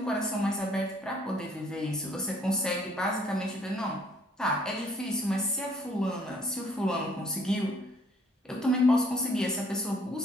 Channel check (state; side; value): normal; both; correlation 0.62